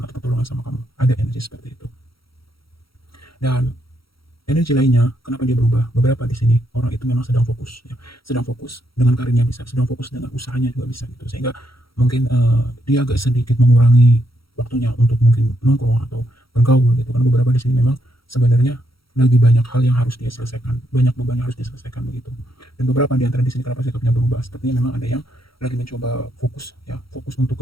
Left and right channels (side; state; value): right; late; 0.75 ms